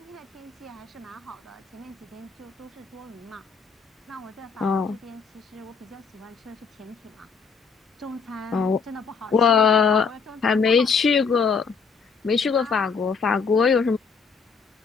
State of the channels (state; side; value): quieter; right; 5.3 dB